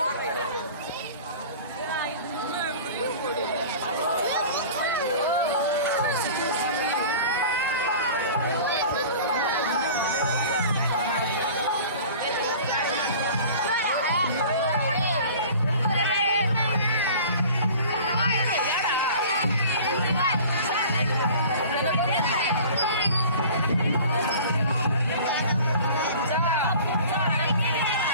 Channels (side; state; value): both; inverted; correlation -0.42